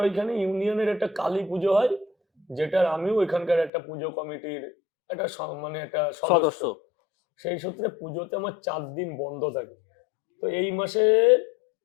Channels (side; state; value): right; drops out; at 3.7 s